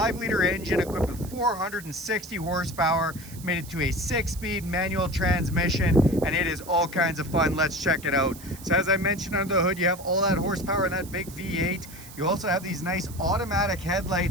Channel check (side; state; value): right; noise; hiss, 17 dB below the sound